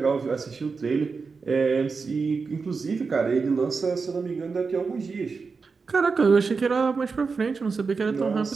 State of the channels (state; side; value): quieter; left; 4.8 dB